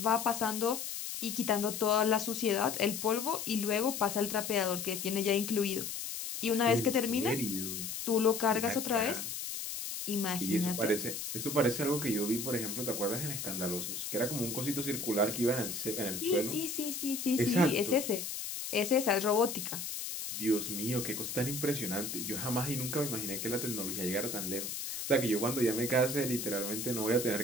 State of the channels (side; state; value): left; noise; hiss, 5 dB below the sound